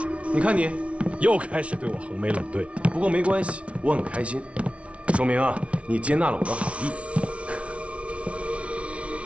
你看你，又开始对我横眉冷对。不过没关系，我很开心，说明啊，你接纳了我的好意。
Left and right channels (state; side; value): late; left; 0.062 ms